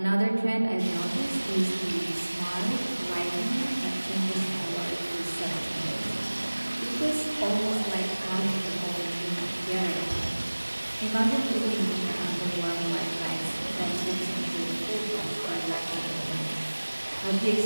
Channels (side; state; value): both; inverted; correlation -1.00